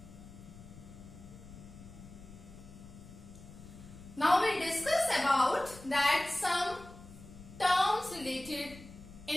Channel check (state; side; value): noise; left; rumble, 17 dB below the sound